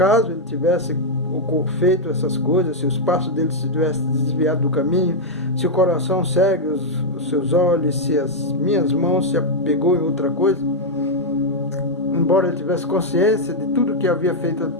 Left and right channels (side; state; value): both; normal; correlation -0.02